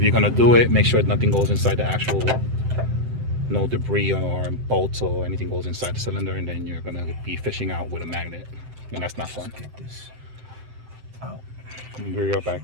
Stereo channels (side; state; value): left; late; 7.8 ms